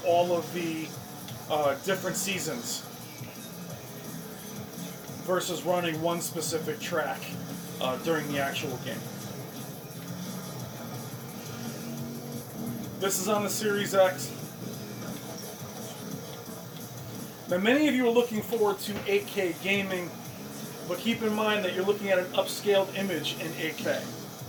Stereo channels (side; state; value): both; identical; correlation 1.00